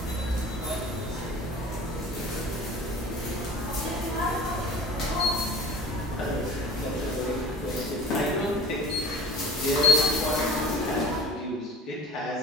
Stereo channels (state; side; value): normal; both; correlation 0.42